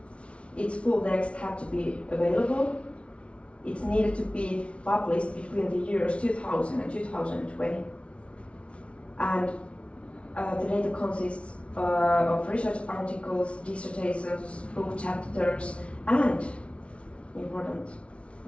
its full text had to be available. It's needed to be published between the years 2000 and 2020. And the data consists of research articles, dissertations, book chapters, and, important,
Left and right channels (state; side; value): late; right; 0.061 ms